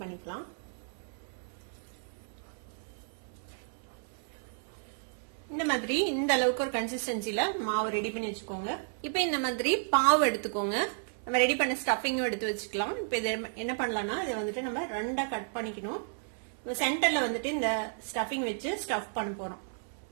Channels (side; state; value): left; silent; 56 dB below the other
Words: பண்ணிக்கலாம். இந்த மாதிரி இந்த அளவுக்கு ஒரு கன்சிஸ்டன்சில மாவு ரெடி பண்ணி வச்சுக்கோங்க. இப்ப இந்த மாதிரி பாவு எடுத்துக்கோங்க. நம்ம ரெடி பண்ண ஸ்டஃபிங்கும் எடுத்து வச்சுக்கலாம். இப்ப இதை என்ன பண்ணலாம்னா இது வந்துட்டு நம்ம 2ஆ கட் பண்ணிக்கணும். சென்டர்ல வந்துட்டு இந்த ஸ்டஃபிங் வச்சு ஸ்டஃப் பண்ண போறோம்.